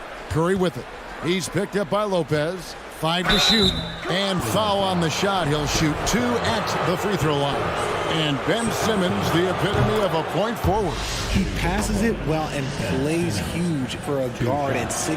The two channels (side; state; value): both; identical; correlation 1.00